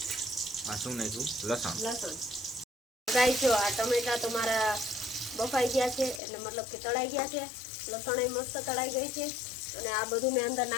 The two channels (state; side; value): drops out; right; at 6.2 s